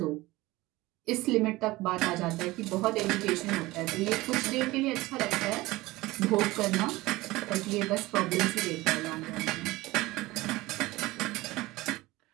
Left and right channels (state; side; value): quieter; left; 19.7 dB